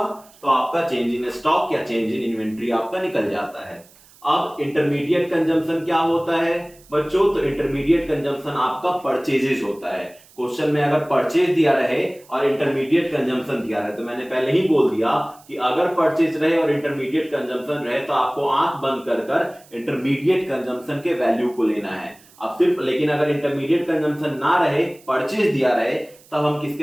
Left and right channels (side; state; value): right; noise; hiss, 26 dB below the sound